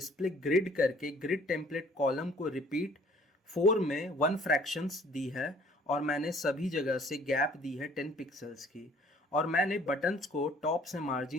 ग्रिड करके ग्रिड टेम्पलेट कॉलम को रिपीट 4 में 1 फ्रैक्शंस दी है, और मैंने सभी जगह से गैप दी है 10 पिक्सल्स की, और मैंने बटन्स को टॉप से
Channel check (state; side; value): normal; both; correlation 0.56